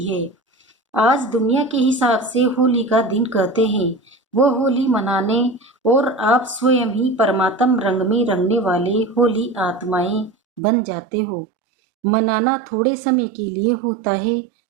है। आज दुनिया के हिसाब से होली का दिन कहते हैं। वो होली मनाने और आप स्वयं ही परमात्म रंग में रंगने वाले होली आत्माएं बन जाते हो। मनाना थोड़े समय के लिए होता है,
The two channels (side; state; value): left; drops out; at 10.6 s